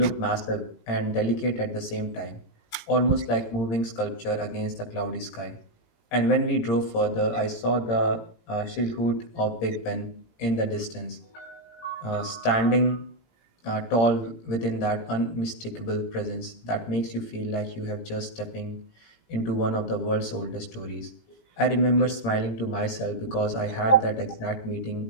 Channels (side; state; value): right; late; 17 ms